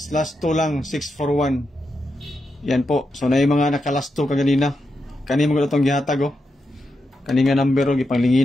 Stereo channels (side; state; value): both; normal; correlation 0.86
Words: last 2 lang, 641. Yan po. So na yung mga nakalasto kaganina. Kani mo itong gihatag oh. Kani nga number oh,